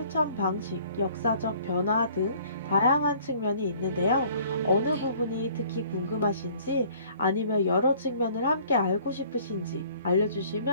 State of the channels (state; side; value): inverted; both; correlation -0.55